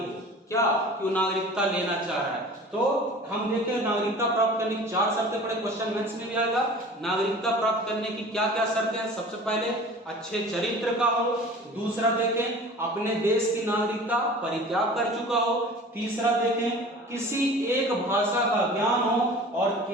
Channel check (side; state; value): both; normal; correlation 0.42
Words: क्या कि वो नागरिकता लेना चाह रहा है। तो हम देखें नागरिकता प्राप्त करने की 4 शर्तें पड़े, क्वेश्चन मेंस में भी आएगा। नागरिकता प्राप्त करने की क्या क्या शर्तें हैं? सबसे पहले अच्छे चरित्र का हो। दूसरा देखें अपने देश की नागरिकता परित्याग कर चुका हो। तीसरा देखें किसी एक भाषा का ज्ञान हो और